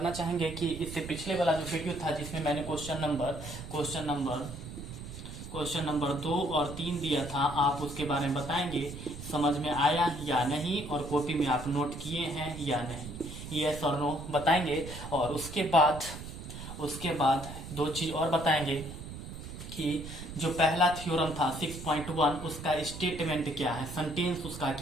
चाहेंगे कि इससे पिछले वाला जो वीडियो था जिसमें मैंने क्वेश्चन नंबर 2 और 3 दिया था, आप उसके बारे में बताएंगे समझ में आया या नहीं और कॉपी में आप नोट किए हैं या नहीं, यस और नो बताएंगे। और उसके बाद दो चीज और बताएंगे कि जो पहला थ्योरम था 6.1 उसका स्टेटमेंट क्या है, सेंटेंस उसका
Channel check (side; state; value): right; noise; rumble, 10 dB below the sound